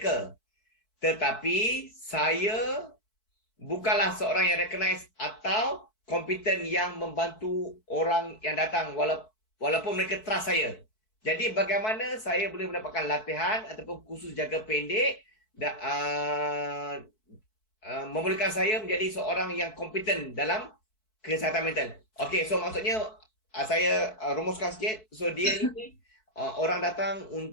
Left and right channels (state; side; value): late; right; 4.6 ms